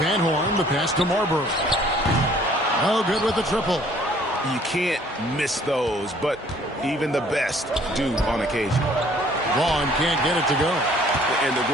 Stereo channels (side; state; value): both; normal; correlation 0.58